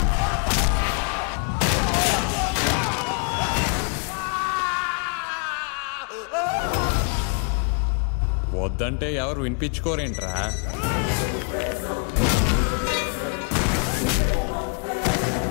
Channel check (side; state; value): right; quieter; 38.6 dB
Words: వద్దంటే ఎవరు వినిపించుకోరేంట్రా?